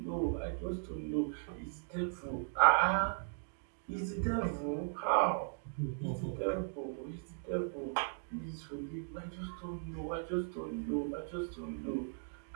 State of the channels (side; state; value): left; silent; digital silence